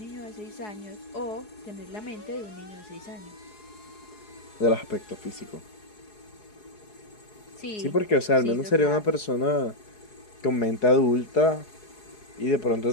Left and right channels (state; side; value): late; right; 4.8 ms